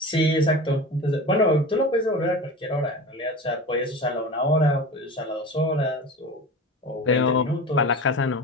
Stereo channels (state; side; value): normal; both; correlation 0.32